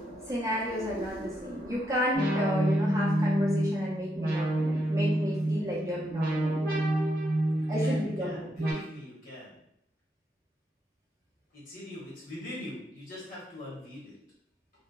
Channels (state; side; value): normal; both; correlation 0.81